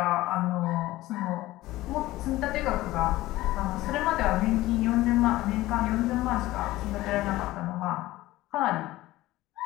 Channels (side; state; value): right; quieter; 17.2 dB